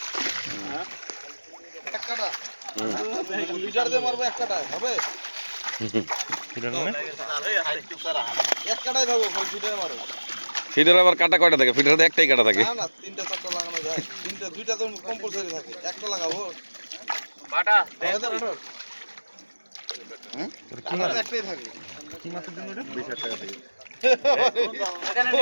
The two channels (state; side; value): inverted; both; correlation -1.00